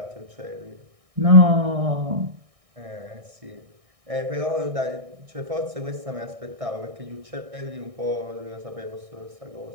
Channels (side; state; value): left; late; 1.6 ms